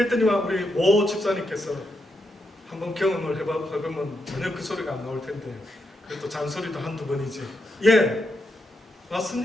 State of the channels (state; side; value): normal; both; correlation 0.83